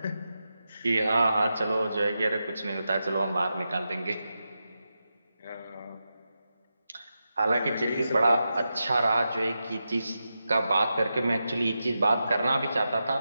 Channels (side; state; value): both; inverted; correlation -0.89